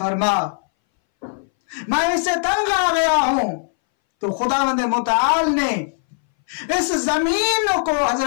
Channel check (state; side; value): silent; right; 63 dB below the other